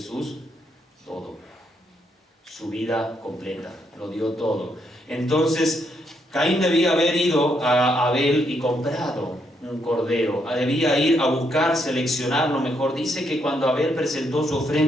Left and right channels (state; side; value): normal; both; correlation 0.76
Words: Todo. Su vida completa, lo dio todo. Entonces, Caín debía haber ido a Abel y comprado un cordero. Debía ir a buscar, seleccionar lo mejor. Dice que cuando Abel presentó su